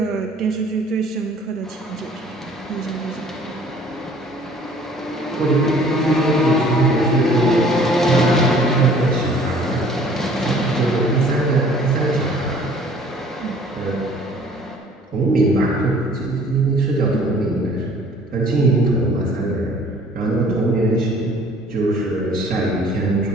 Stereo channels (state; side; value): normal; both; correlation 0.54